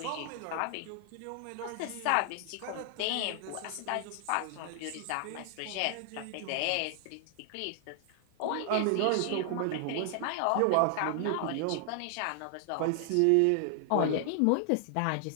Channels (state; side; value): different; both; correlation 0.00